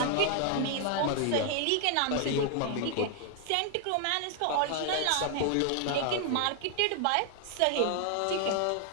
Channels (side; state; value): both; different; correlation 0.00